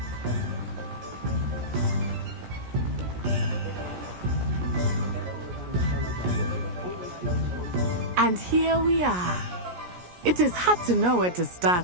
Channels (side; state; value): left; late; 17 ms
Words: And here we are. It is hard to know where to